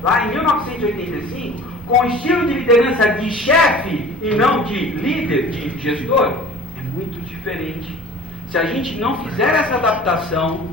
lá em 1985, com o estilo de liderança de chefe e não de líder, de gestor, é muito diferente. se a gente não fizer essa adaptação,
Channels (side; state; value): both; normal; correlation 0.44